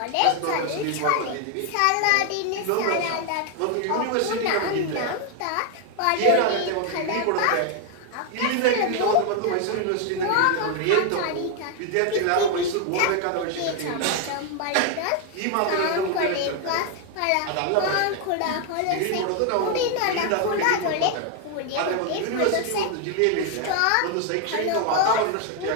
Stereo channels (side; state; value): both; different; correlation 0.01